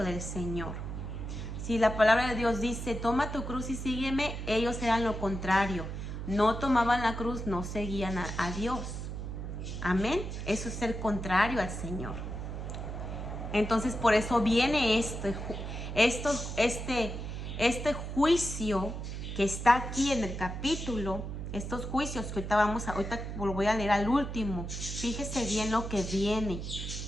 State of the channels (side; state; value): right; noise; hum, 6 dB below the sound